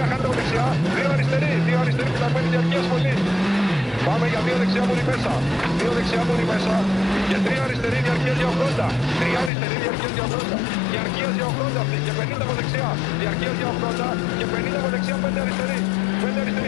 χάνετε από δεξιά, 2 αριστερή φυλαγμένη, διαρκείας πολύ. Πάμε για 2 δεξιά μόνοι μέσα. 2 δεξιά μόνοι μέσα. Και 3 αριστερή διαρκείας για 80. 3 αριστερή διαρκείας για 80. Διαρκείας για 80 αυτή. Και 50 από δεξιά. Διαρκείας για 80. Και 50 από δεξιά. 5 αριστερή. 5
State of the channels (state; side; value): drops out; right; at 9.5 s